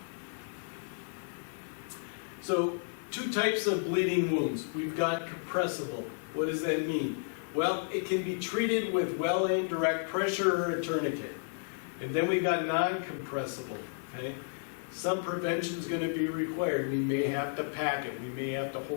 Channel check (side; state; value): right; silent; digital silence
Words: So, two types of bleeding wounds. We've got compressible. What does that mean? Well, it can be treated with well-aimed direct pressure or a tourniquet. And then we've got non-compressible, okay? Some prevention is going to be required. We may have to pack it. We may have to